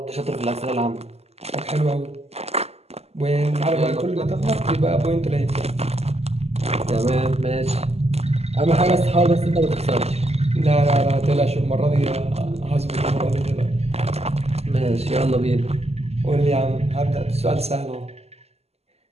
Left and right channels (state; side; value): late; left; 0.30 ms